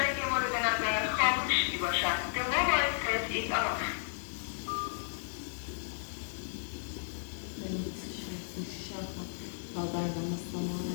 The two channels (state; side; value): silent; right; digital silence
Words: مورد نظر خاموش می باشد به موبایل ترید آف